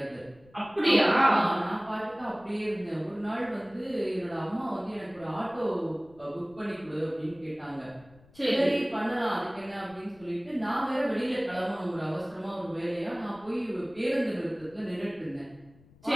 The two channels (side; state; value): left; noise; rumble, 26 dB below the sound